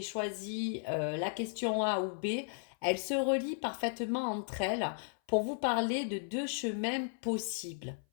choisi la question A ou B, elles se relient parfaitement entre elles pour vous parler de deux chemins possibles.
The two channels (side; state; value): right; silent; 54 dB below the other